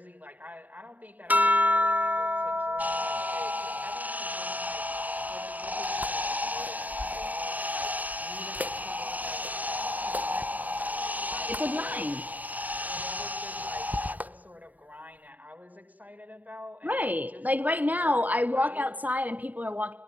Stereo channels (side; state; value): left; late; 0.078 ms